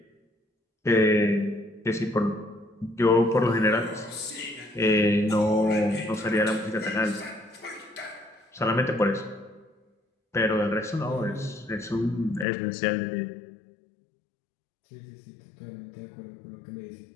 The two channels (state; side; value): drops out; right; at 12.5 s